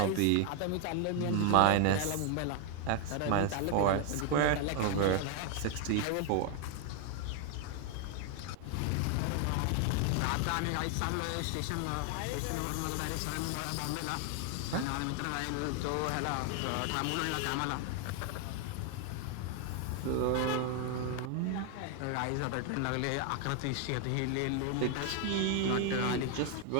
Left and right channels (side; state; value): both; different; correlation 0.00